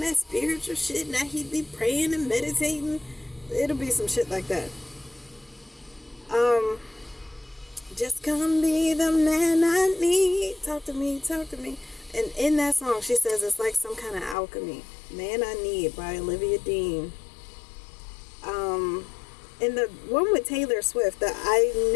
that spiritual shit. Now he be praying and meditating. It'll be some shit like that. Just come be the man I need. Talk to me, talk to me. And in that song, she says it's like some kind of alchemy. Man I Need by Olivia Dean. In the one with Taylor Swift, the I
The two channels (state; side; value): drops out; right; at 14.4 s